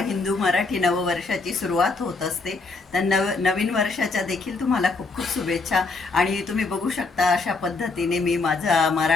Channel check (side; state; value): right; quieter; 3.9 dB